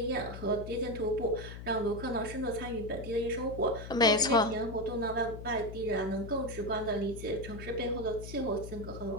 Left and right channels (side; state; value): left; noise; hum, 10 dB below the sound